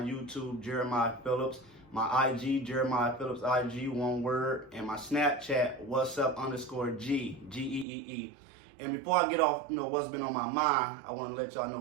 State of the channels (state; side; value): drops out; left; at 7.9 s